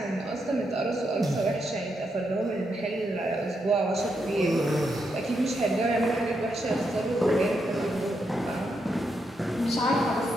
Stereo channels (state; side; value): normal; both; correlation 0.82